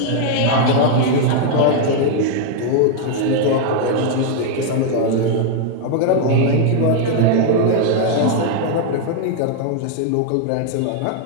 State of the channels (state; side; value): different; both; correlation 0.00